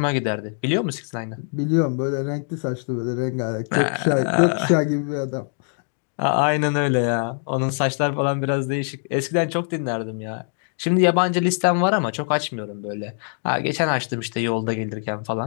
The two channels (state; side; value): silent; right; 63 dB below the other